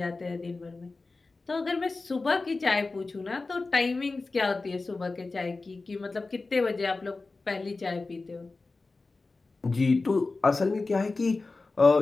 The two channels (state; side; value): quieter; right; 3.6 dB